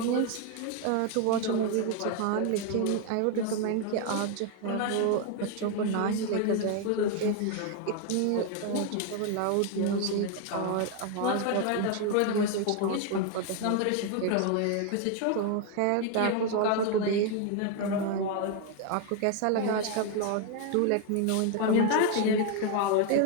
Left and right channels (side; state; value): both; different; correlation 0.01